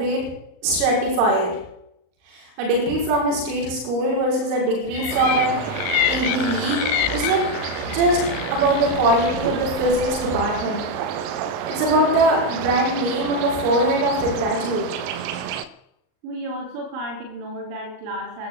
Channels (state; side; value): late; left; 38 ms